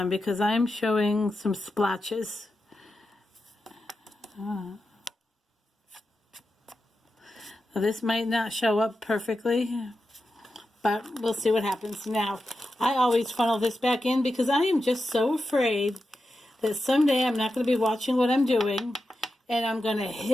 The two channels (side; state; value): both; normal; correlation 0.90